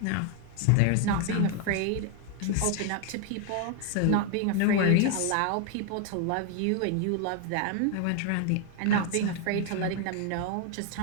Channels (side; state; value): both; different; correlation 0.00